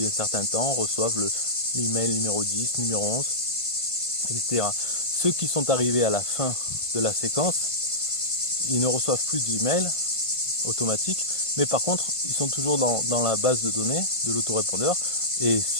un certain temps reçoivent l'email numéro 10, numéro 11, etc. Ceux qui sont arrivés à la fin de la séquence, ils ne reçoivent plus d'email automatique, mais par contre, ils sont toujours dans la base de données de l'autorépondeur. Et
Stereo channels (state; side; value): late; right; 1.5 ms